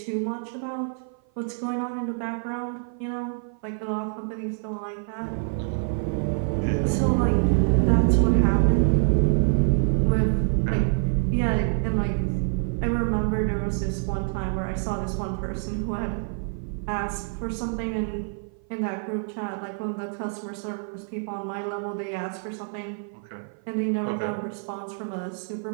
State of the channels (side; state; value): left; silent; 55 dB below the other